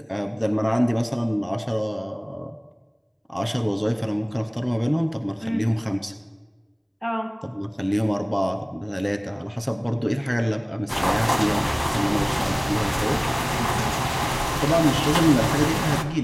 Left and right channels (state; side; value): identical; both; correlation 1.00